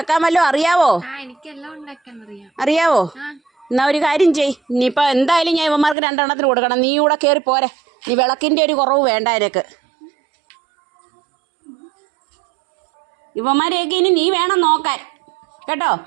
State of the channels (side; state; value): left; drops out; at 6.0 s